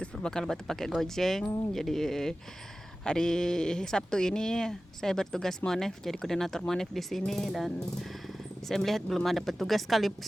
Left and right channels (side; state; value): both; normal; correlation 0.96